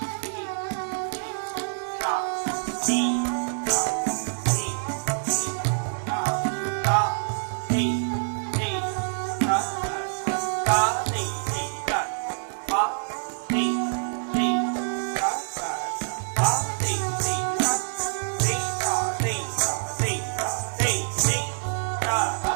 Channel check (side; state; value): left; silent; digital silence